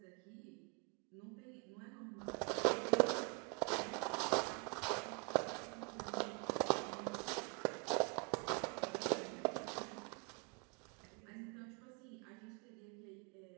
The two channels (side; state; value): left; quieter; 32.4 dB